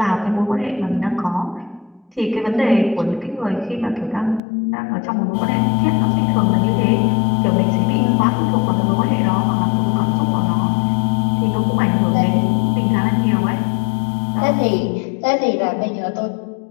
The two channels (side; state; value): right; drops out; at 4.4 s